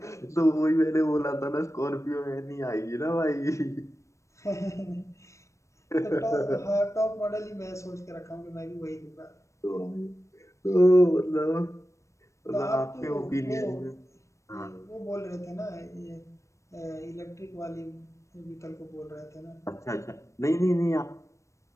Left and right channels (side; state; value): right; late; 0.15 ms